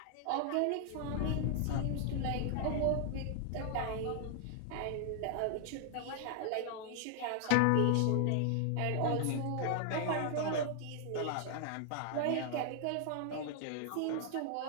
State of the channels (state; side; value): different; both; correlation 0.00